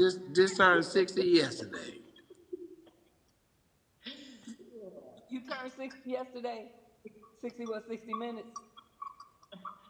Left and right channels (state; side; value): identical; both; correlation 1.00